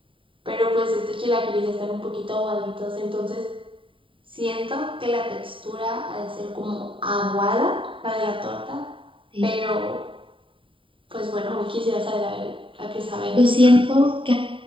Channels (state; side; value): late; left; 0.25 ms